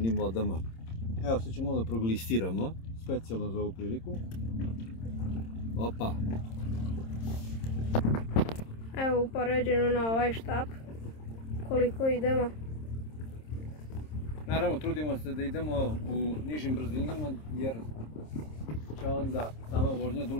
vodama. Evo, sad ćemo da proglistiramo specijalno za ovu priliku. Opa! Evo upoređeno na ovaj štap koliko idemo. Naravno, trudimo se da idemo u nižim brzinama jer će onda sama vožnja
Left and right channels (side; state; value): right; late; 26 ms